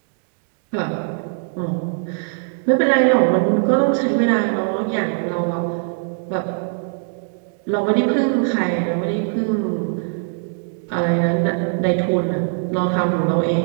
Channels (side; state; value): left; silent; digital silence